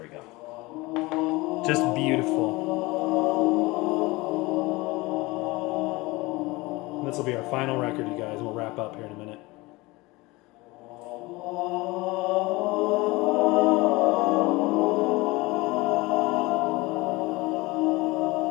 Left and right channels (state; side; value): quieter; right; 22.4 dB